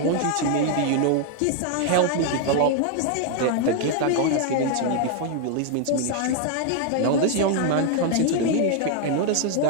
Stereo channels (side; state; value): both; different; correlation 0.00